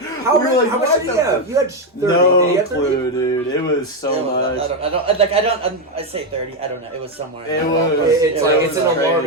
How we were much, like, how much "What did you the have? You had 30. Did you No have 30? clue, dude. It was so much. I say 30. I don't know. It was somewhere. It in was. there. It's like was it's an crazy.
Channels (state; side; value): normal; both; correlation 0.06